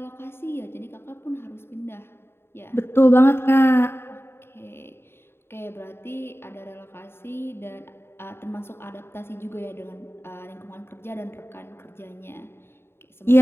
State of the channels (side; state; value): right; late; 0.11 ms